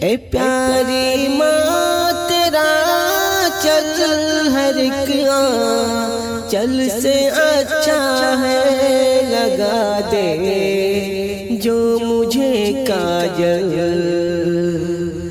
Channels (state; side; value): identical; both; correlation 1.00